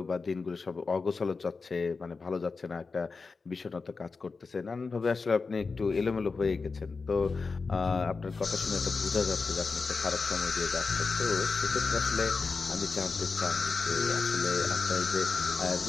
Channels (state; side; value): quieter; right; 4.4 dB